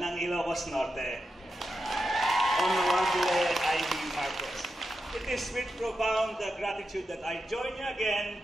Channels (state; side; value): normal; both; correlation 0.88